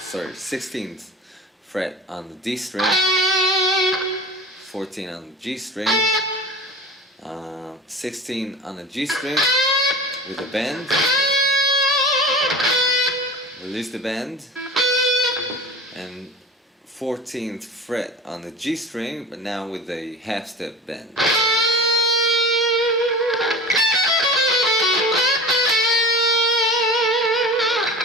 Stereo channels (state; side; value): normal; both; correlation 0.37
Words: 16th fret on the D string, 14 on the G string, 16 on the G string with a bend, release the bend, and 14th fret on the G string, but now with a half step bend.